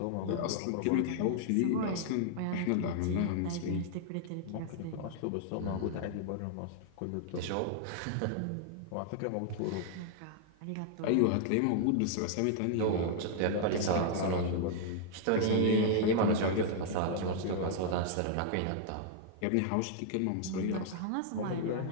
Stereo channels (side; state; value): both; different; correlation -0.01